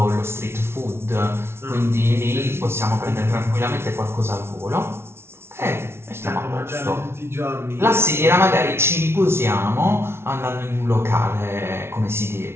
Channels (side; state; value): left; late; 0.12 ms